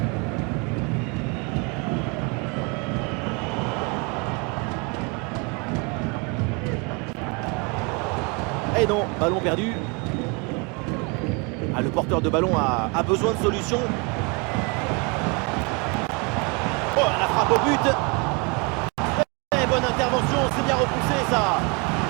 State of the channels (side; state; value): left; quieter; 31.3 dB